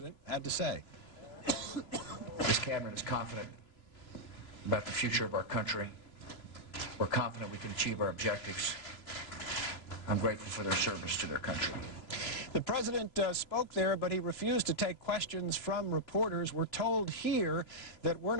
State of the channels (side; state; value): right; late; 3.0 ms